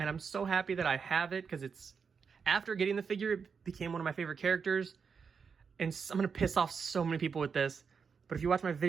I'm so happy that I have it because it's after getting the figure, it became one of my favorite characters. And I'm gonna piss off so many people with this, but if you watch my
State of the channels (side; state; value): left; quieter; 5.9 dB